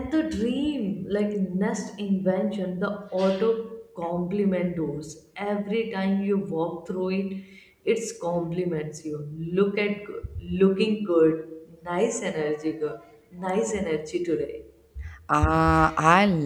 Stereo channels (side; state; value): both; identical; correlation 1.00